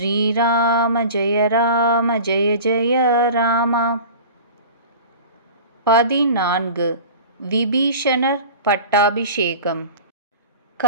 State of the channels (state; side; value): inverted; both; correlation -0.37